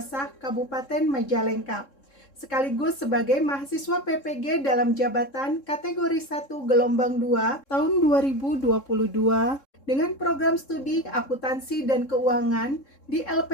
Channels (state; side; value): late; right; 3.7 ms